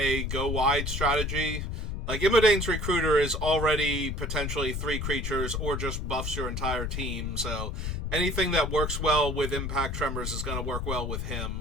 go-wide strategy. Like, Imodane's Recruiter is already potentially 3 creatures or just buffs your entire team, so anything that works well with Impact Tremors is going to work well with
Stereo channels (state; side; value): noise; left; rumble, 3 dB below the sound